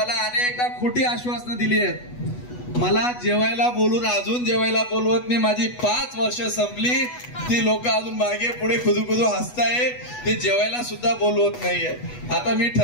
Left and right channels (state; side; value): late; right; 8.2 ms